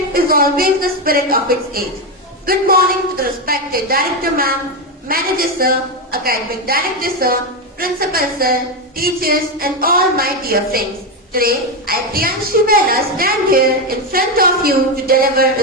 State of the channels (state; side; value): normal; both; correlation 0.09